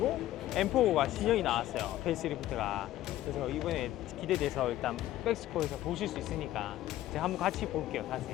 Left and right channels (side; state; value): right; quieter; 14.3 dB